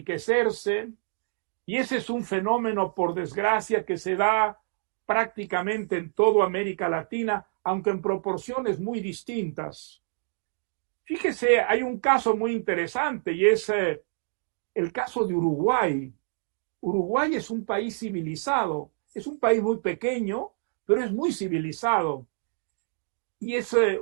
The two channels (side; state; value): left; silent; digital silence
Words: y ese es un fenómeno, por desgracia, que se da prácticamente en toda América Latina, aunque en proporciones muy distintas. Fíjese, hay un caso muy interesante y es el caso de Uruguay. Uruguay es un país civilizado, es un país muy pequeño, pero es muy civilizado. Y es